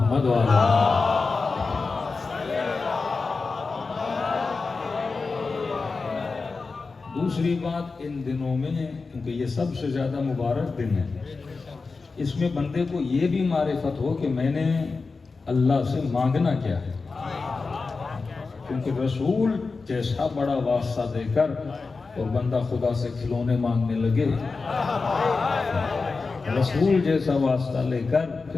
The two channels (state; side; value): quieter; right; 4.2 dB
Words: و آل محمد۔ دوسری بات، ان دنوں میں کیونکہ یہ سب سے زیادہ مبارک دن ہے، اس میں بندے کو یہ بھی معرفت ہو کہ میں نے اللہ سے مانگنا کیا ہے، کیونکہ رسول جیسا بڑا واسطہ دے کر اور بندہ خدا سے کھلونے مانگنے لگے، رسول جیسا واسطہ لے کر